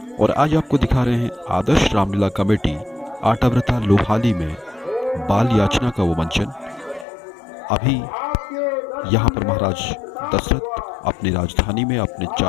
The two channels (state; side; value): drops out; right; at 7.1 s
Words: और आज आपको दिखा रहे हैं आदर्श रामलीला कमेटी आटाव्रता लोहाली में बाल याचना का वो मंचन। अभी यहाँ पर महाराज दशरथ अपनी राजधानी में अपने